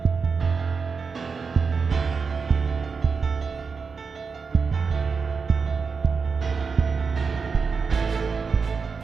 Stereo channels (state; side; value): quieter; left; 5.2 dB